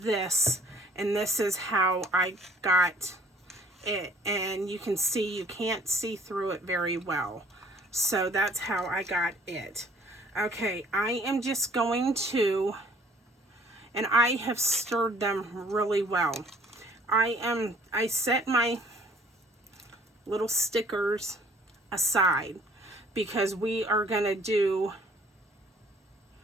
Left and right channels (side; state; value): both; normal; correlation 0.57